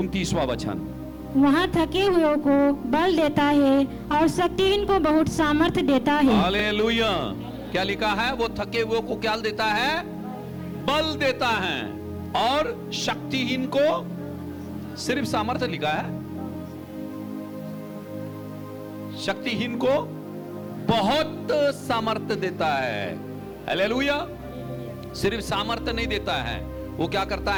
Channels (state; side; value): identical; both; correlation 1.00